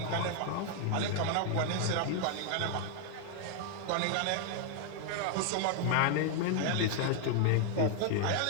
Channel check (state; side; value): different; both; correlation 0.00